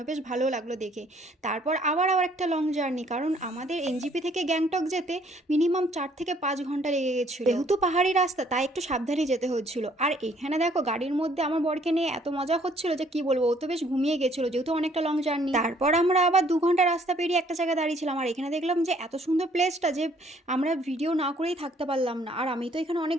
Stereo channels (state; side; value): normal; both; correlation 0.62